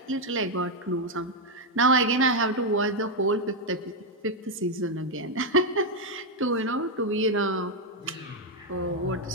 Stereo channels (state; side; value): normal; both; correlation 0.02